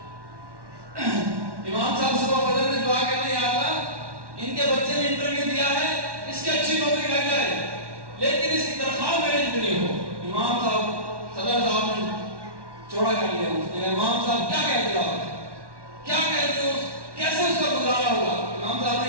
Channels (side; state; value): left; late; 1.1 ms